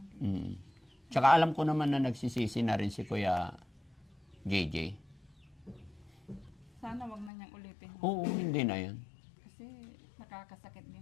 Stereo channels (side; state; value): right; drops out; at 7.3 s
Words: Mm. Tsaka alam ko naman na nagsisisi na rin si Kuya JJ. Sana wag na niyang ulitin. Oo, hindi na yan. Kasi nakakasakit